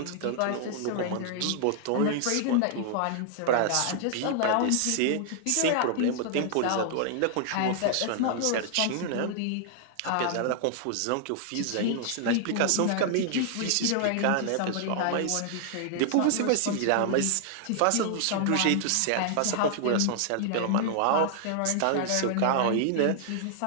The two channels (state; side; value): different; both; correlation 0.00